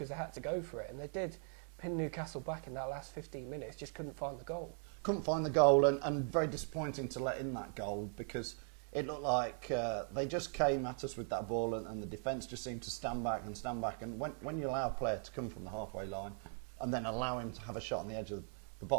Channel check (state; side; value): silent; left; 51 dB below the other